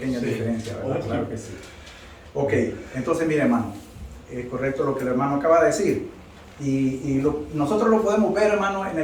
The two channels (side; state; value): both; identical; correlation 1.00